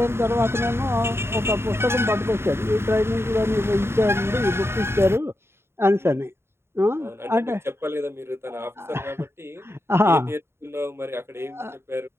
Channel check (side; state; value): left; late; 0.12 ms